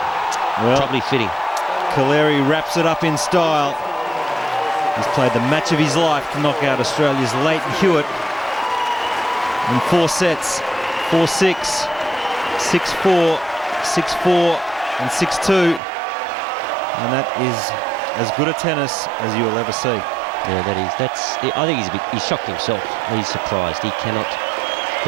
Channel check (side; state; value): left; drops out; at 15.8 s